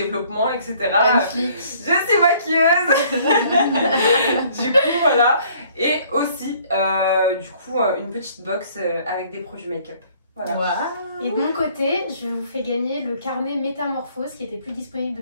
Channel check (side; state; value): both; inverted; correlation -0.59